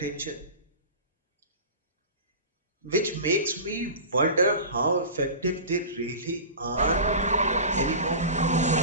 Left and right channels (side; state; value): both; inverted; correlation -0.33